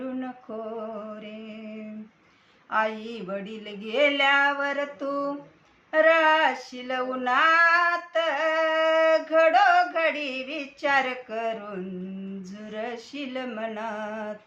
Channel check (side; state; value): both; identical; correlation 1.00